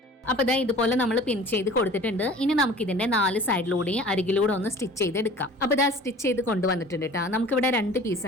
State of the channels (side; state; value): both; normal; correlation 0.45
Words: അപ്പൊ ഇതാ ഇതുപോലെ നമ്മൾ പിൻ ചെയ്ത് കൊടുത്തിട്ടുണ്ട്. ഇനി നമുക്ക് ഇതിന്റെ 4 സൈഡിലൂടെയും അരികിലൂടെ ഒന്ന് സ്റ്റിച്ച് ചെയ്തെടുക്കാം. അപ്പൊ ഇതാ സ്റ്റിച്ച് ചെയ്ത് കൊണ്ടുവന്നിട്ടുണ്ട് കേട്ടോ. നമുക്കിവിടെ 2